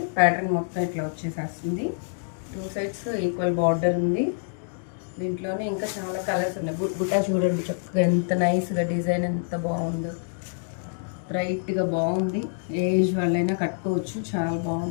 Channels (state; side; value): silent; right; digital silence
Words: ప్యాటర్న్ మొత్తం ఇట్లా వచ్చేసేస్తుంది. 2 సైడ్స్ ఈక్వల్ బార్డర్ ఉంది. దీంట్లోనే ఇంకా చాలా కలర్స్ ఉన్నాయి. బుట్టా చూడండి చక్కగా ఎంత నైస్గా డిజైన్ ఎంత బాగుందో, బ్రైట్గా బాగుంది. ఏజ్ వాళ్ళైనా కట్టుకోవచ్చు, చాలా